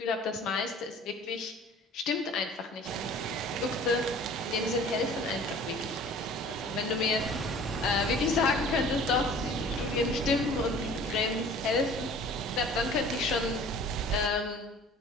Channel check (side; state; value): both; normal; correlation 0.47